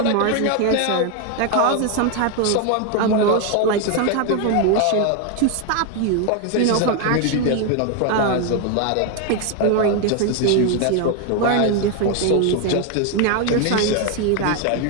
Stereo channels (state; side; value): different; both; correlation 0.01